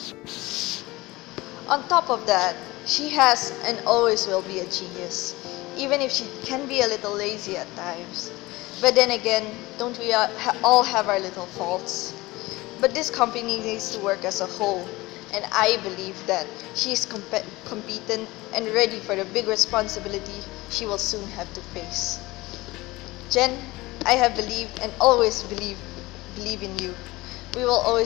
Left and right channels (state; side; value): quieter; right; 20.5 dB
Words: On top of that, she has and always will be a genius, even if she can be a little lazy at times. But then again, don't we all have our little faults? But this company needs to work as a whole, and I believe that she is competent and ready for the big responsibility she will soon have to face. Jen, I have believed and always believe in you. We will